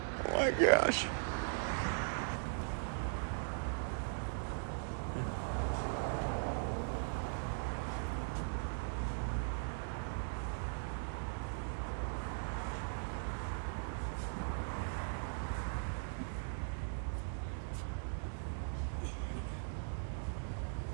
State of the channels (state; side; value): silent; left; digital silence